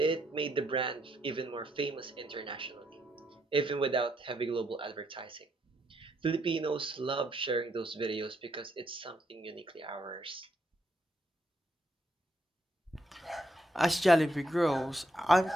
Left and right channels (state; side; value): normal; both; correlation 0.76